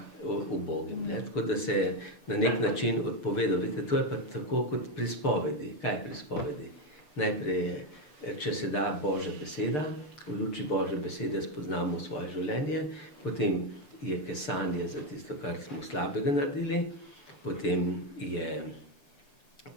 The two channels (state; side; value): late; right; 6.8 ms